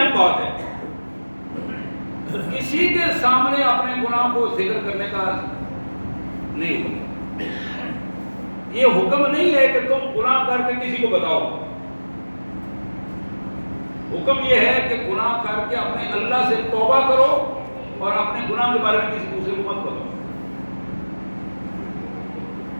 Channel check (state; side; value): inverted; both; correlation -1.00